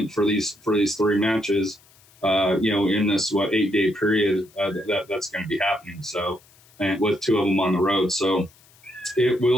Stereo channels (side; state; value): left; noise; hiss, 29 dB below the sound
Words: for these 3 matches, in this, 8-day period that's going to be happening. So, and with 2 of them on the road. So